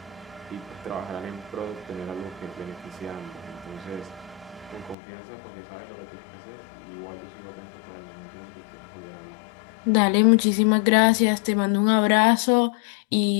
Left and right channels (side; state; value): right; drops out; at 5.0 s